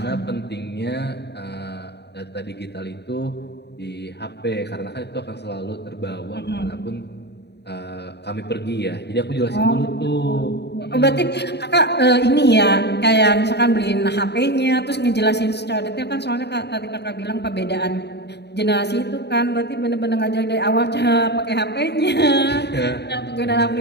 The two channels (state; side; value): late; right; 0.49 ms